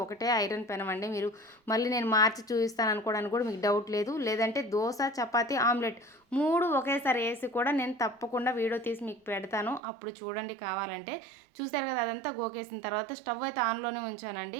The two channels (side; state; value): left; drops out; at 9.8 s